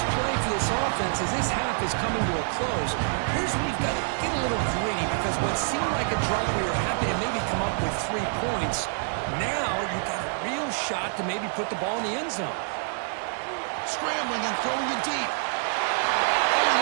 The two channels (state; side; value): silent; left; 60 dB below the other